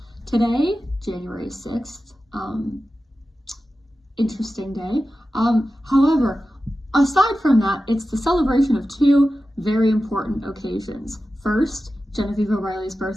Today, January 6th, interesting day. However, aside from that, it's the celebration of two very important occasions. First, Genevieve O'Reilly's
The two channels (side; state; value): both; normal; correlation 0.93